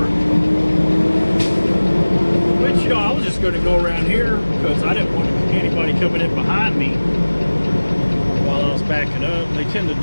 Which, you know, I was just going to go around here because I didn't want anybody coming in behind me while I was backing up. They tend to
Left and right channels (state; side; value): inverted; both; correlation -1.00